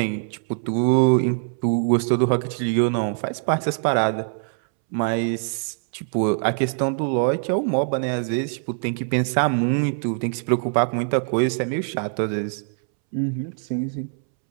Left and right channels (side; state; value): left; silent; 63 dB below the other